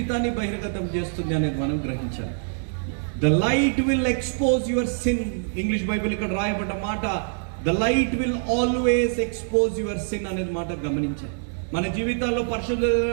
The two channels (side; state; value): left; silent; digital silence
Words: బహిర్గతం చేస్తుంది అనేది మనం గ్రహించాలి. The light will expose your sin. English Bible ఇక్కడ రాయబడ్డ మాట, the light will always expose your sin అనేది మాట గమనించాలి. మన జీవితాల్లో